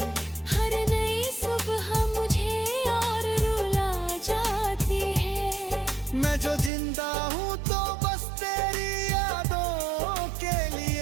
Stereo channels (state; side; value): drops out; left; at 6.7 s